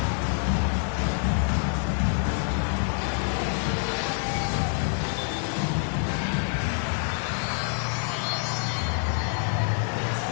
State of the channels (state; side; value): silent; right; 55 dB below the other